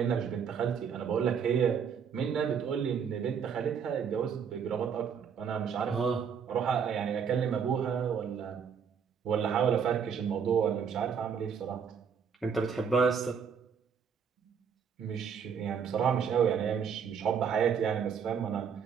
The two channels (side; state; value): left; quieter; 7.0 dB